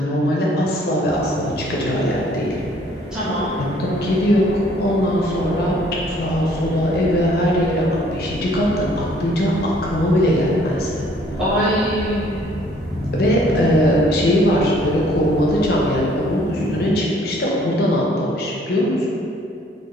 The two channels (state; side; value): normal; both; correlation 0.60